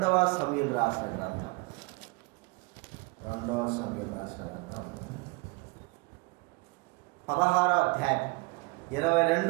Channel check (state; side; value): quieter; left; 27.1 dB